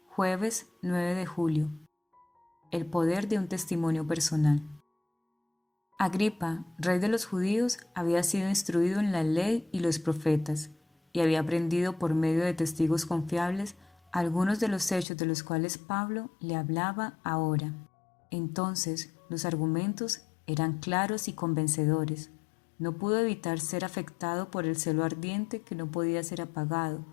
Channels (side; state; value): right; drops out; at 15.1 s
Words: Jueves 9 de julio. El poder de un testimonio personal. Agripa, rey de los judíos, había sido instruido en la ley y los profetas, y había aprendido por medio de testigos confiables algunos de los hechos de los cuales Pablo le hablaba ahora. Entonces, los argumentos eran claros y convencedores. No pudo evitar ser afectado por el celo ardiente que no podía ser apagado,